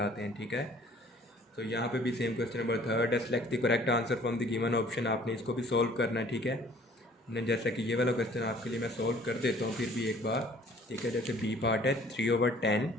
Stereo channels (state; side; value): normal; both; correlation 0.54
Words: हैं. ठीक है. तो यहाँ पे भी सेम क्वेश्चन नंबर 3 है. Select the correct answer from the given option. आपने इसको भी सॉल्व करना है. ठीक है. जैसा कि ये वाला क्वेश्चन आपके लिए मैं सॉल्व कर देता हूँ फिर भी एक बार. ठीक है. जैसे बी पार्ट है 3/10.